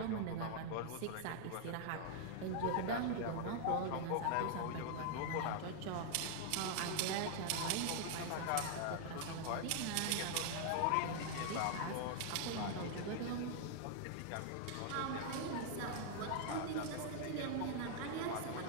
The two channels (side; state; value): both; different; correlation 0.00